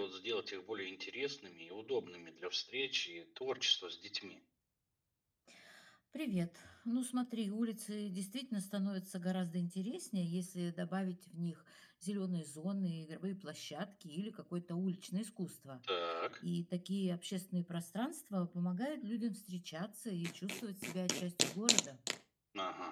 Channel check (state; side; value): identical; both; correlation 1.00